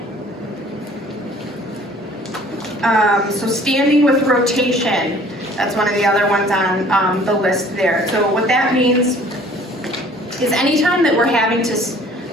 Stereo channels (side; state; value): both; normal; correlation 0.52